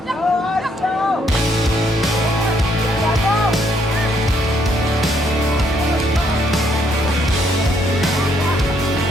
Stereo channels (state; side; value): normal; both; correlation 0.71